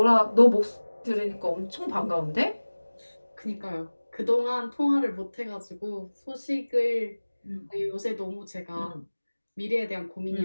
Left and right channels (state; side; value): inverted; both; correlation -1.00